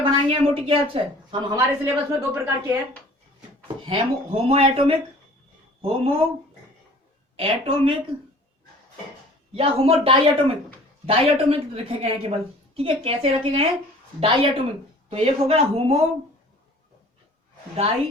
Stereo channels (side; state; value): both; normal; correlation 0.48